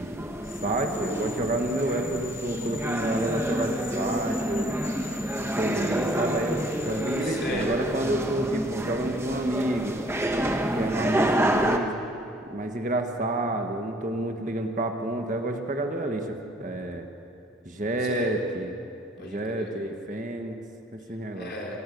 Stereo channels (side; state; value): both; normal; correlation 0.58